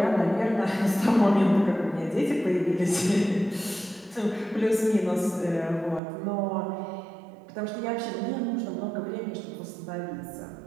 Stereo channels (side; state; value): left; drops out; at 6.0 s